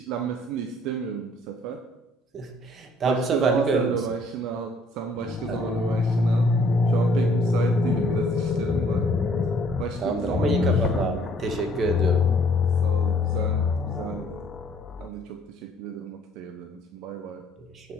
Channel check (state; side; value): normal; both; correlation 0.61